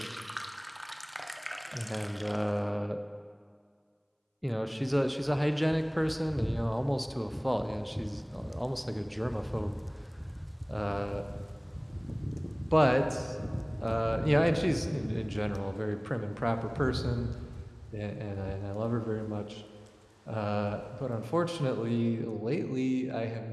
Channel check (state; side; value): identical; both; correlation 1.00